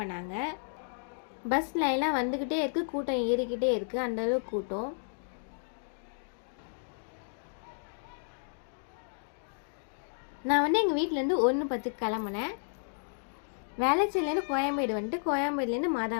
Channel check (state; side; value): silent; right; digital silence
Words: பண்ணாங்க. பஸ் லைன்லாம் வந்துக்கிட்டே இருக்குது, கூட்டம் ஏறிக்கிட்டே இருக்குது. அந்தளவுக்கு கூட்டம். நான் எங்கள் வீட்டிலேருந்து 1:10 கிளம்புனேன். வேளச்சேரிலேருந்து கோயம்பேடு வந்துட்டு கோயம்பேடுலேருந்து